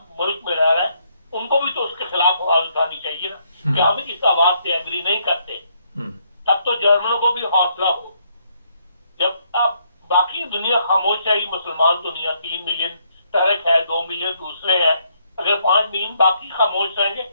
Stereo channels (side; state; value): both; inverted; correlation -0.72